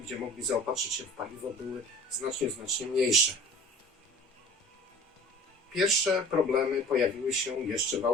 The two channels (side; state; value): both; normal; correlation 0.44